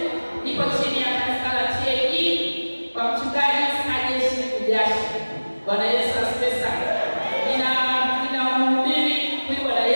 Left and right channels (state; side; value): inverted; both; correlation -1.00